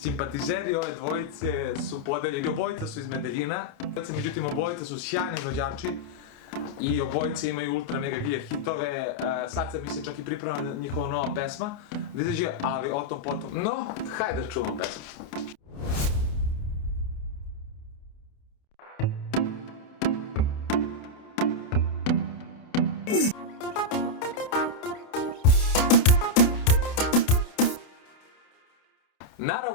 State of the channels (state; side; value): late; right; 29 ms